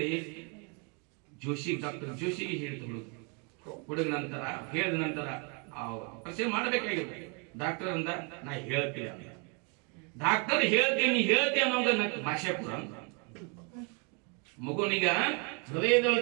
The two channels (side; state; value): left; quieter; 34.0 dB